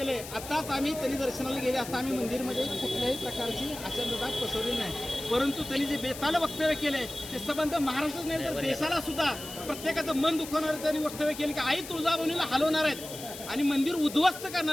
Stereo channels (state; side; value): noise; left; hiss, 12 dB below the sound